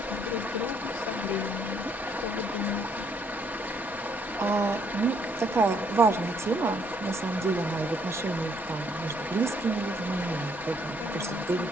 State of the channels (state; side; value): noise; left; rumble, 25 dB below the sound